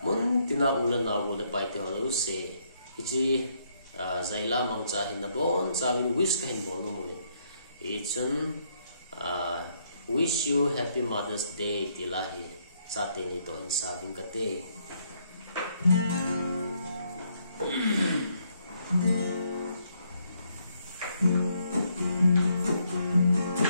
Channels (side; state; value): both; inverted; correlation -0.72